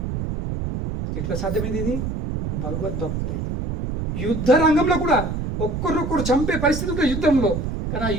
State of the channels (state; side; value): noise; right; rumble, 3 dB below the sound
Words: ఎట్లా సాధ్యమైంది ఇది? భగవద్భక్తులైతే. యుద్ధ రంగంలో కూడా ఒక్కరొక్కరు చంపే పరిస్థితి ఉంటుంది యుద్ధంలో. కానీ ఆ